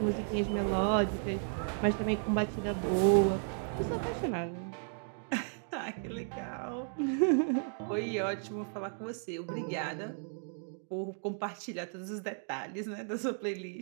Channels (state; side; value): silent; left; 55 dB below the other